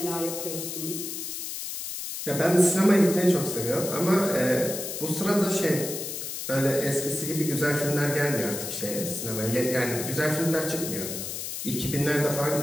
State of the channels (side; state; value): left; noise; hiss, 6 dB below the sound